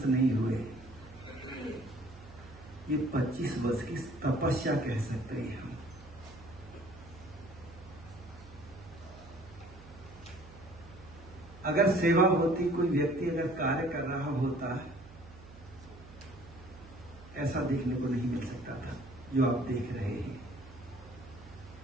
नहीं हुए, ये 25 वर्ष की तपस्या कह सकते हैं हम। अगर सेवा होती, कोई व्यक्ति अगर कार्य कर रहा होता, ऐसा देखने को नहीं मिल सकता था जो आप देख रहे हैं।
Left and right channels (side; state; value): right; noise; hum, 18 dB below the sound